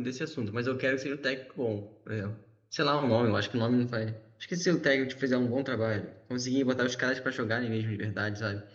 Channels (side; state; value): both; identical; correlation 1.00